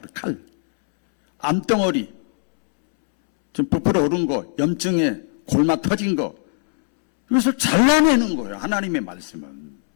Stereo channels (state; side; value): silent; right; 65 dB below the other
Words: 그래, 칼. 암덩어리, 좀 부풀어 오른 거, 염증에 골마 터진 거, 이것을 잘라내는 거예요. 하나님의 말씀은.